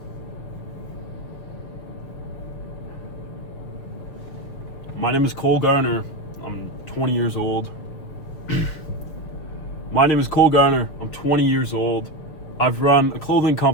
My name is Cole Garner. I'm 20 years old. My name is Cole Garner. I'm 20 years old. I've run a clothing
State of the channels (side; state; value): right; late; 6.3 ms